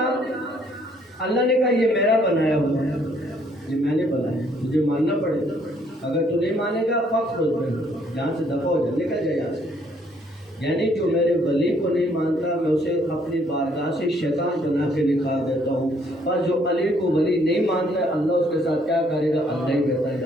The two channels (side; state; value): both; normal; correlation 0.65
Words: اللہ نے کہا یہ میرا بنایا ہوا ہے، یہ میں نے بنایا، مجھے ماننا پڑے گا، اگر تو نہیں مانے گا فخر ہو جائے، جہاں سے دفع ہو جائے، نکل جائے یہاں سے۔ یعنی جو میرے ولی کو نہیں مانتا میں اسے اپنی بارگاہ سے شیطان بنا کے نکال دیتا ہوں، اور جو علی کو ولی نہیں مانتا ہے اللہ اس کے ساتھ کیا کرے گا اللہ ہی بہتر